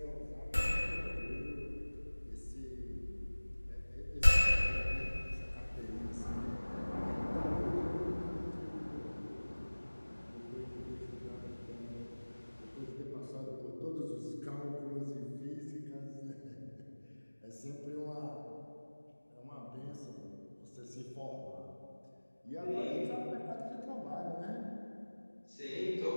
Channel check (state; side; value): inverted; both; correlation -1.00